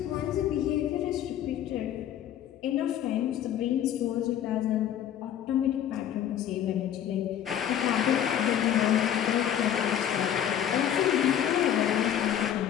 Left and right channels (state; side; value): quieter; right; 10.2 dB